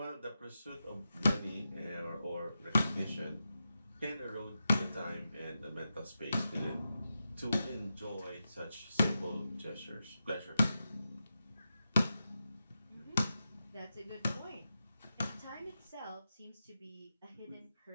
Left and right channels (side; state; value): both; inverted; correlation -0.90